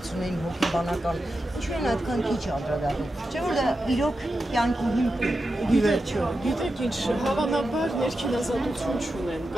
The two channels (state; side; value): normal; both; correlation 0.90